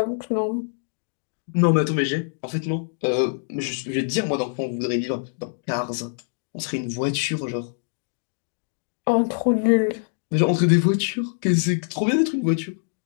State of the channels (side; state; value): right; silent; digital silence